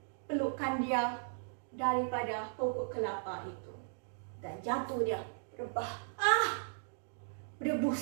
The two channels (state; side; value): silent; left; digital silence